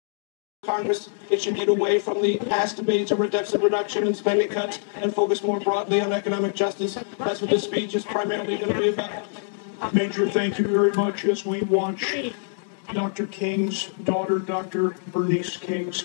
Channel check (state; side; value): silent; right; digital silence